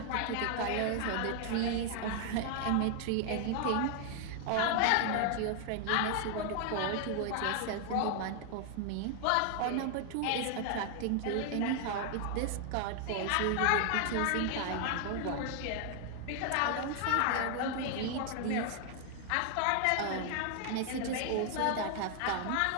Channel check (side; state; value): both; different; correlation 0.00